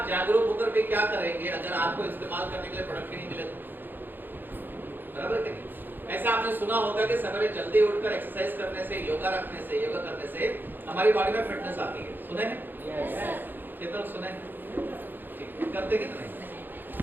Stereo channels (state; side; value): late; left; 0.093 ms